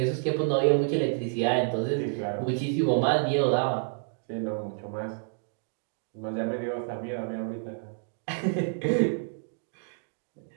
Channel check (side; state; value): left; silent; digital silence